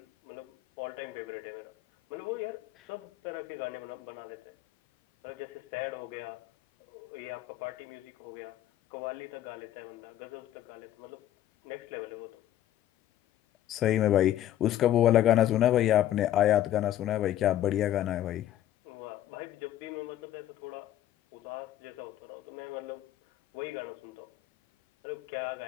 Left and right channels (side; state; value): right; quieter; 12.5 dB